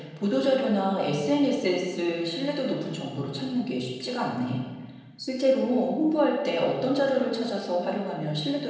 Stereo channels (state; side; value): identical; both; correlation 1.00